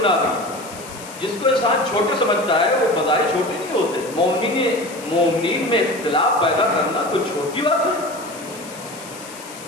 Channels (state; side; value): noise; left; hiss, 16 dB below the sound